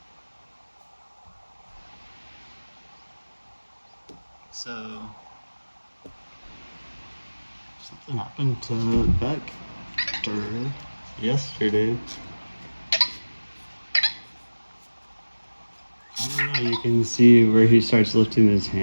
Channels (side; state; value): both; inverted; correlation -1.00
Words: So, something happened to Vector yesterday. I don't know, you can see where he starts lifting his